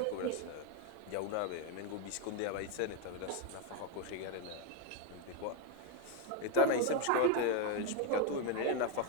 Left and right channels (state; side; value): different; both; correlation 0.02